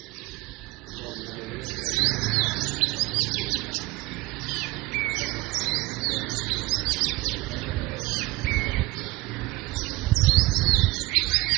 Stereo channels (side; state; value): left; quieter; 20.6 dB